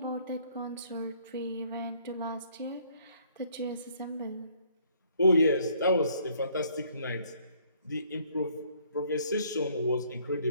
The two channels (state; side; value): inverted; both; correlation -0.63